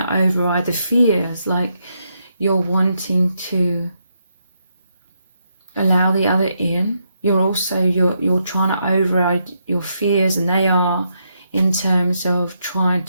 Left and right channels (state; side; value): inverted; both; correlation -0.80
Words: override the fears, like you're wanting to allow the other in. You're also, you're trying to override your fears, and they are in terms of trying